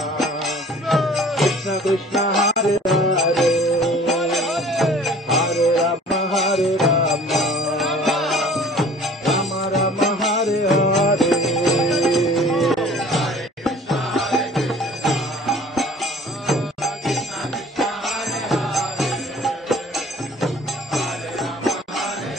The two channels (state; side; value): normal; both; correlation 0.49